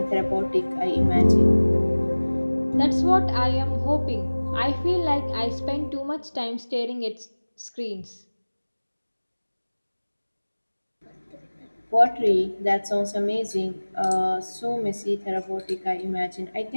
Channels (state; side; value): inverted; both; correlation -1.00